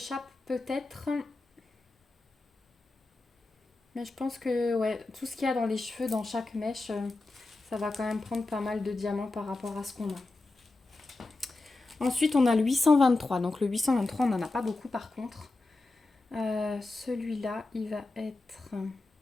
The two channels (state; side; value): quieter; right; 3.2 dB